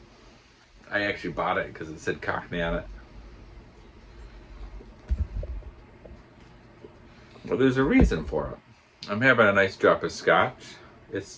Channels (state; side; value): identical; both; correlation 1.00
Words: actually bought it because it said Cockney on it. Well, there's a reason for it. I'm having a nice drop of scotch.